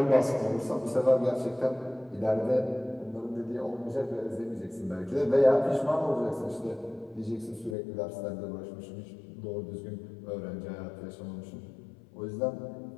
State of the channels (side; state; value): right; drops out; at 7.8 s